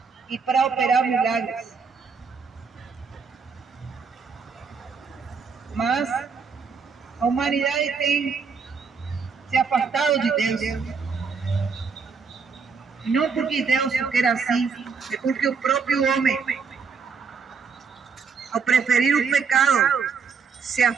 e para operar milagres. Mas a humanidade tem se afastado de Deus. Não porque Deus quer assim, é porque o próprio homem, ao preferir o pecado, se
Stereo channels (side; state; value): left; quieter; 5.5 dB